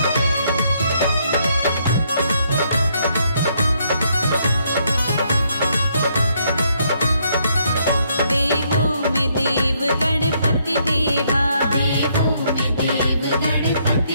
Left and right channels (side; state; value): both; inverted; correlation -0.72